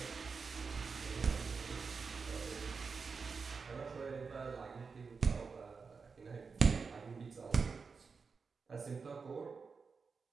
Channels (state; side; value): quieter; left; 5.0 dB